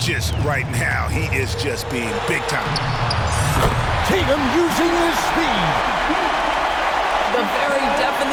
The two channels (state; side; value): identical; both; correlation 1.00